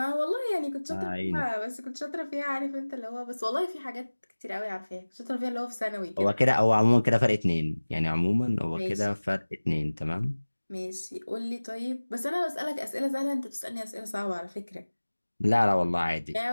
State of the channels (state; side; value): inverted; both; correlation -1.00